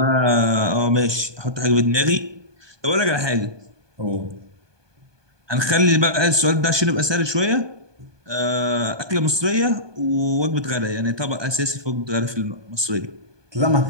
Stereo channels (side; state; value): left; late; 1.2 ms